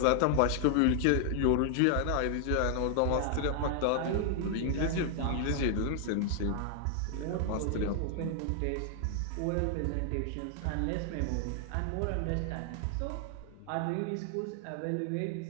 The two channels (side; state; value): both; different; correlation 0.00